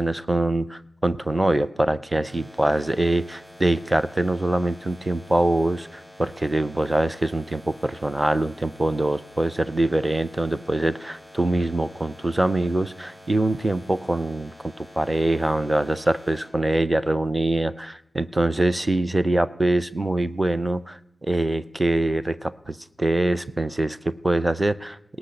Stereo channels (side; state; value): both; normal; correlation 0.95